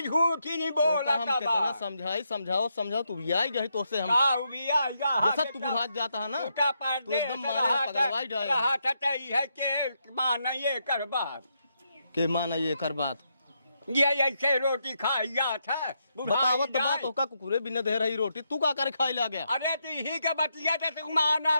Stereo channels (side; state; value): both; inverted; correlation -0.80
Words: झूठी नहीं तो बोला हम कितना समझाओ तू भी आई गई तो से हम जैसा तू बुझात जाता है ना तू एकदम मारे पगलवाई जाए के मान ये कर बात के माना ये कर बात ये ऐसे रोटी खाइया था बतावत तो बात होका कुकुरे बिना दे रही रोटी तू का करे खाई ला गया अरे तू ही के बतिया ते तू माना